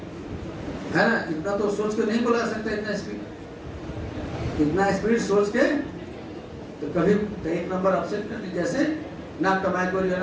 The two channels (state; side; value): identical; both; correlation 1.00